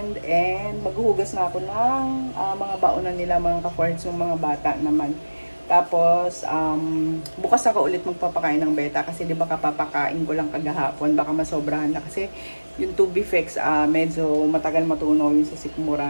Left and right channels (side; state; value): both; inverted; correlation -1.00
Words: And maghuhugas na ako ng mga baonan nila mga ka-foreheads, yung mga bata naman. Tapos, bukas ako ulit magpapakain ng beta kasi di ba kapapakain ko lang kagahapon, baka masobrahan na kasi yung Tubifex, medyo matagal matunaw yung sa